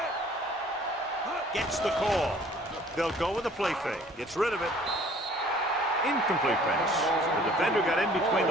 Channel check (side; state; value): both; normal; correlation 0.54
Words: Gets the call. They'll go with a play fake. Gets rid of it. Incomplete pass. The defender got in between